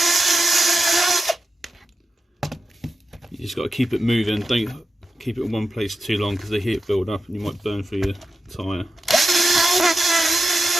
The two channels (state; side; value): normal; both; correlation 0.91